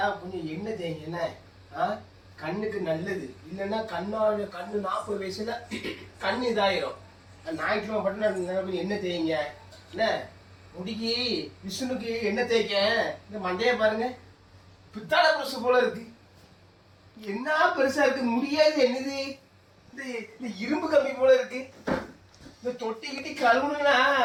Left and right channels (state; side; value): identical; both; correlation 1.00